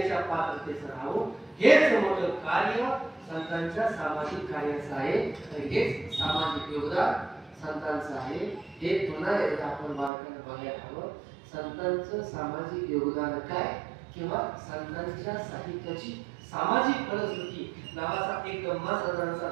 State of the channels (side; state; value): left; drops out; at 10.1 s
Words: पात्रतेचं राहू. हेच मोठं कार्य संतांच्या सामाजिक कार्याचं आहे. हेच सामाजिक योगदान संतांचं आहे. हे पुन्हा एकदा आपण बारकाईने बघायला हवं. संतांचं सामाजिक योगदान काय किंवा संतांच्या साहित्याची सामाजिक फलश्रुती नावाचा एक गंमासाधारणचा